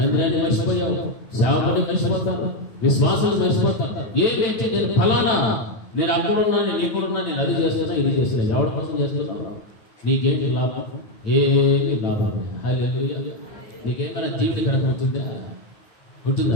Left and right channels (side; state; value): right; late; 9.4 ms